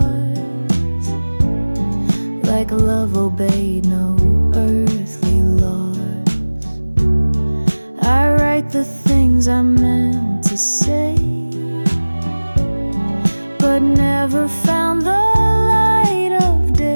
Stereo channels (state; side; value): inverted; both; correlation -1.00